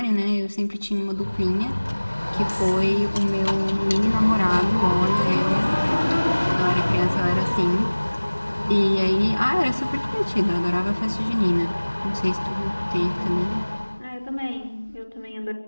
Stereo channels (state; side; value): inverted; both; correlation -1.00